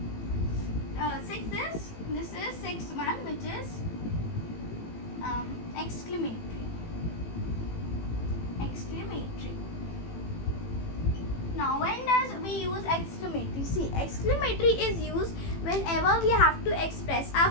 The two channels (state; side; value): late; right; 18 ms